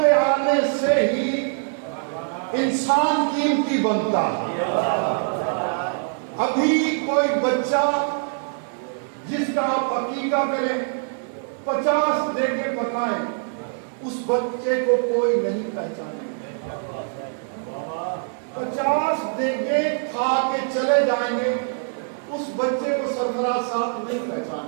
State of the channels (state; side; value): silent; left; 63 dB below the other